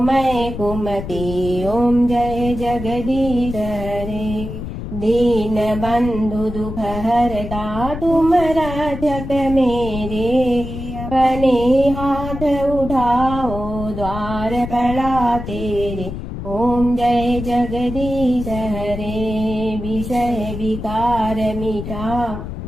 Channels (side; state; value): left; noise; rumble, 8 dB below the sound